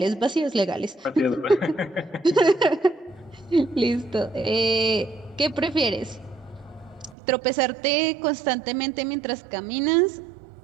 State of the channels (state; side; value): drops out; left; at 7.2 s